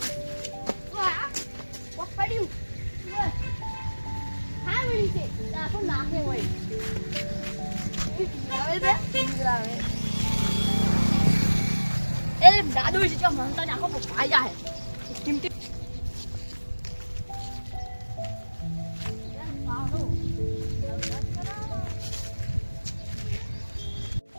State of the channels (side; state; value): both; inverted; correlation -1.00